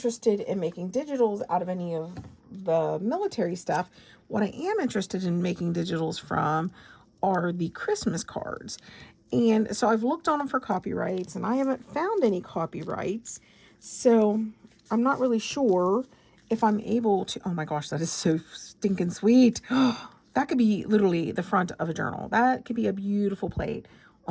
in making digitals out of any of the military stuff. What I am interested in making digitals from are the Christmas cards. And so I've looked on them for copyrights, and I haven't found any copyrights. So I'm not really sure if I'm able to. Oh my gosh, that is so stinking sweet. That could be literally the front of a journal. That could be a beautiful plate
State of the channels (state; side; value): identical; both; correlation 1.00